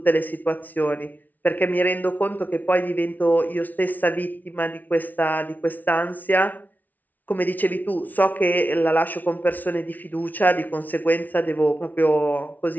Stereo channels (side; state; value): right; late; 0.079 ms